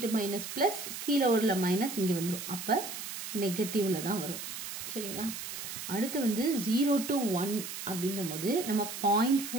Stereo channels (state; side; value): noise; right; hiss, 7 dB below the sound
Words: மைனஸ் பிளஸ், கீழே உள்ள மைனஸ் இங்க வந்துடும். அப்ப நெகட்டிவ்ல தான் வரும். சரிங்களா? அடுத்து வந்து 0 to 1 அப்படின்ற போது நம்ம